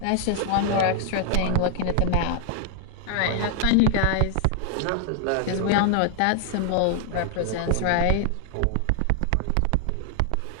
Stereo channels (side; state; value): both; different; correlation 0.00